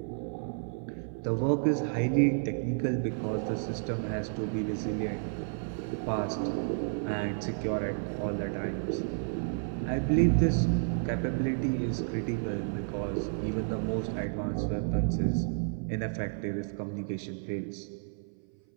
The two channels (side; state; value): left; silent; 57 dB below the other